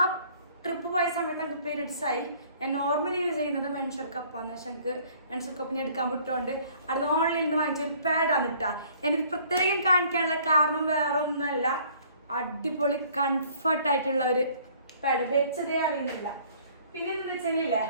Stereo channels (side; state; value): both; inverted; correlation -0.57